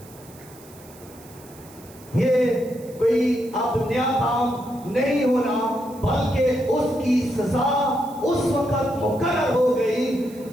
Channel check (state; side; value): noise; right; hiss, 23 dB below the sound